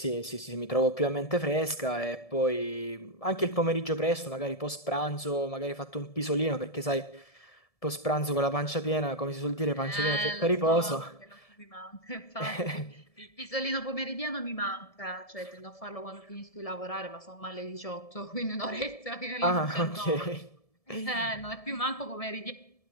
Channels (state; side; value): late; right; 1.7 ms